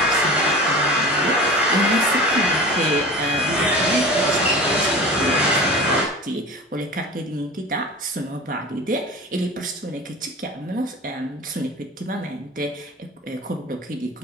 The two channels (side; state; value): both; normal; correlation 0.35